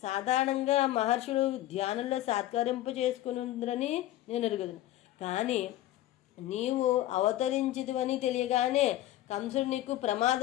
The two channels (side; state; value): right; quieter; 14.3 dB